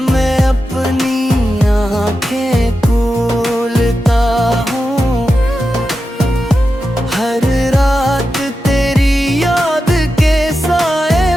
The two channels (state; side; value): normal; both; correlation 0.90